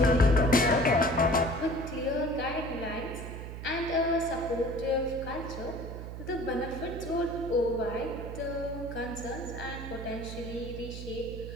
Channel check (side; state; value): right; noise; hum, 9 dB below the sound